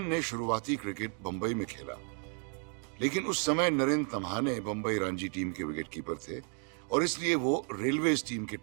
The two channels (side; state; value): left; quieter; 37.1 dB